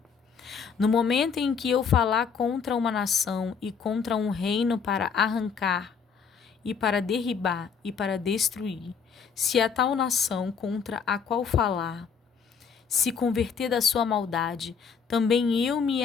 No momento em que eu falar contra uma nação e contra um reino para arrancar, e para derribar e para destruir, se a tal nação contra a qual falar se converter da sua maldade, também eu me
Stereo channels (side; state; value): right; quieter; 6.2 dB